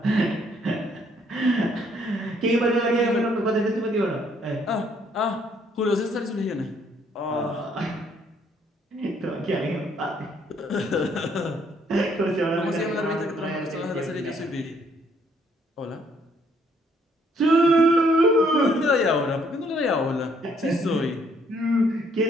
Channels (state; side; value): normal; both; correlation 0.67